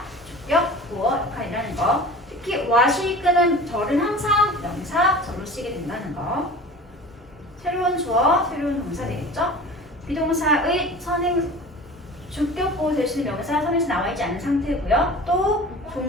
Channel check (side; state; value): both; normal; correlation 0.38